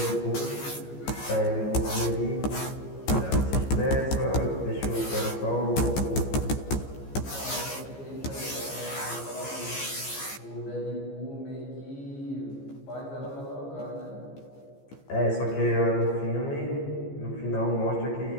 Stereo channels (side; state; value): right; late; 15 ms